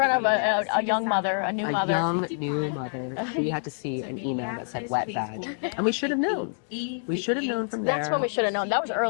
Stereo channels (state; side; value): silent; right; digital silence